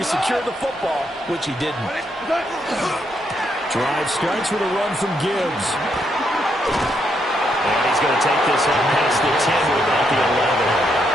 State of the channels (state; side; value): normal; both; correlation 0.77